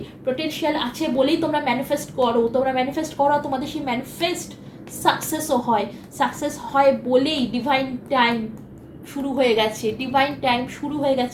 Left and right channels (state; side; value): identical; both; correlation 1.00